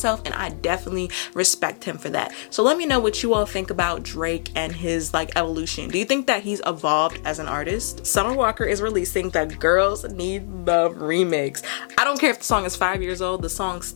and I definitely respect him for that. So let me know what you all think about Drake and his like evolution. Do you think that he's evolved as an artist? Summer Walker is releasing the Girls Need Love remix. I don't care if the song is 5 years old, the song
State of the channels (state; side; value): silent; right; digital silence